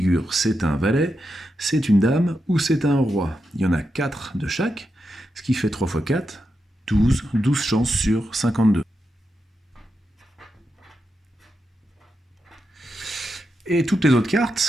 C'est un valet, c'est une dame ou c'est un roi? Il y en a 4 de chaque, ce qui fait 3 fois 4, 12, 12 chances sur 52. Et toutes les autres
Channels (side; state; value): both; normal; correlation 0.87